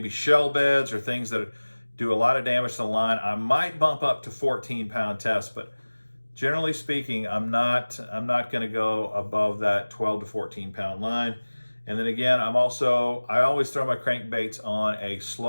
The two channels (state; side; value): inverted; both; correlation -1.00